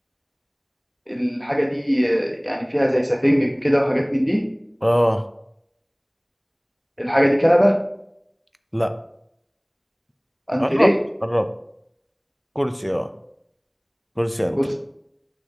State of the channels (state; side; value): identical; both; correlation 1.00